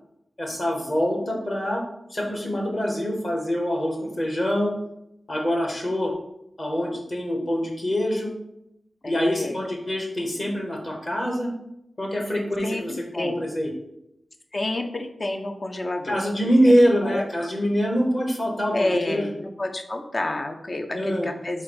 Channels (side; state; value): both; normal; correlation 0.96